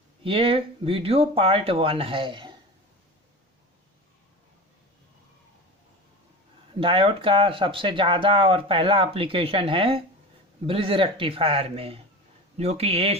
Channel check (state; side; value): normal; both; correlation 0.31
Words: ये वीडियो पार्ट 1 है। डायोड का सबसे ज़्यादा और पहला एप्लीकेशन है ब्रिज रेक्टिफायर में, जो कि